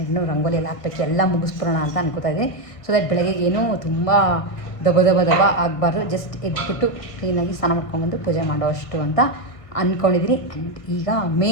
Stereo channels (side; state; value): right; late; 1.5 ms